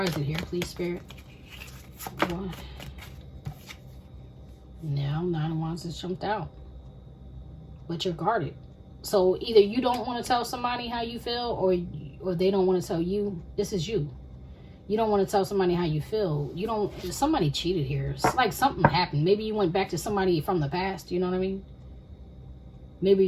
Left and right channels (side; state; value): both; identical; correlation 1.00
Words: is it here, please, Spirit? What? Now, 9 of Wands has jumped out. But you're guarded. So either you don't want to tell somebody how you feel, or they don't want to tell you. This is you. You don't want to tell somebody how you feel. Somebody cheated here. It's like something happened. Maybe you went back to somebody from the past. You know what I mean? Maybe